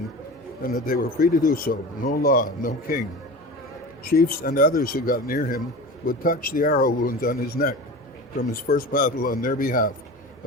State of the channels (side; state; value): both; normal; correlation 0.32